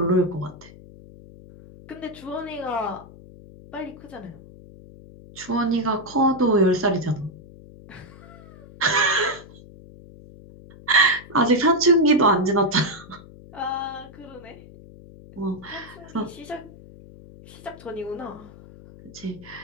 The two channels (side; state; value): left; noise; hum, 19 dB below the sound